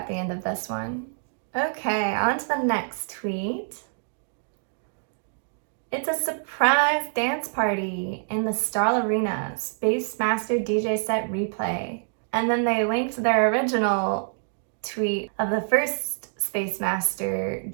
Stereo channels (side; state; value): left; silent; digital silence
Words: the end of this one. Okay, on to the next tweet. It's a surprise dance party in the STARL Arena, Space Master DJ set replay. And then they linked their original tweet of the first Space Master